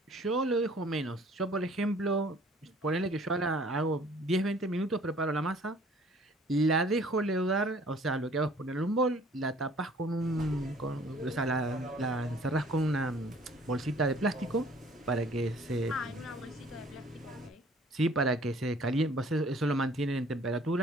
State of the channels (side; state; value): both; normal; correlation 0.55